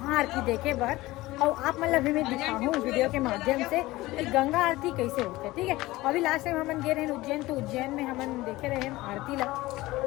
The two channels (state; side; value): quieter; right; 18.8 dB